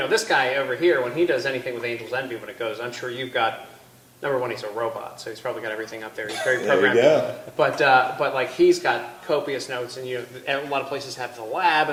guy over here when he does anything with Angel's Envy when it goes. I'm sure you've got. Number one, he's a robot, so he's probably got everything up there. He's very programmed. There you go. But like he's got copious notes, and a lot of places have the lab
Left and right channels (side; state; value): both; identical; correlation 1.00